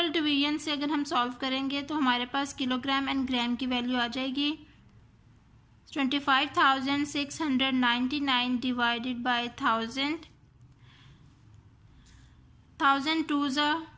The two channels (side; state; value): both; identical; correlation 1.00